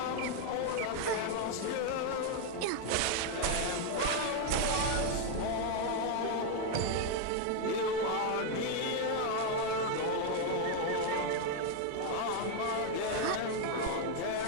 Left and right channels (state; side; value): different; both; correlation 0.01